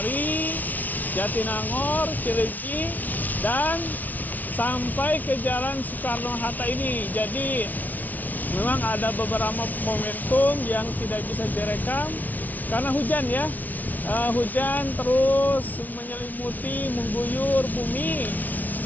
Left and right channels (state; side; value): late; right; 0.078 ms